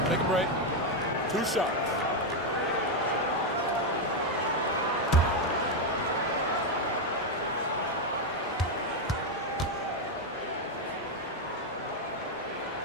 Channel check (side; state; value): both; normal; correlation 0.04